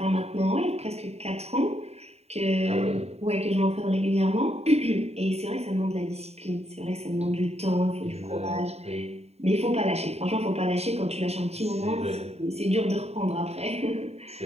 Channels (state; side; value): late; left; 0.30 ms